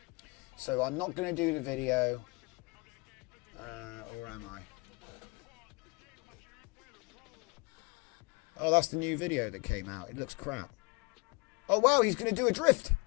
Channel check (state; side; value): quieter; right; 28.3 dB